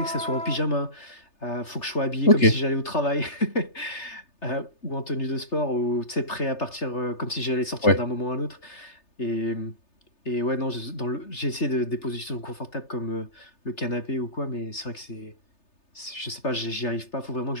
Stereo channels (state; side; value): late; right; 3.3 ms